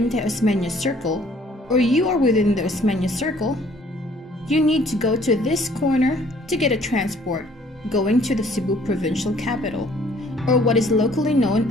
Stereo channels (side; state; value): both; normal; correlation 0.58